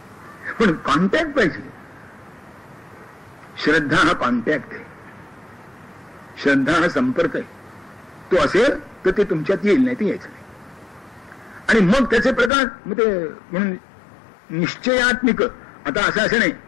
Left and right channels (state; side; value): drops out; right; at 12.5 s